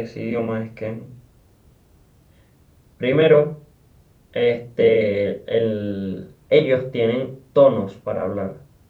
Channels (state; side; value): identical; both; correlation 1.00